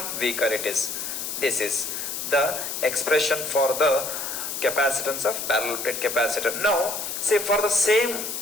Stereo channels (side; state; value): left; noise; hiss, 4 dB below the sound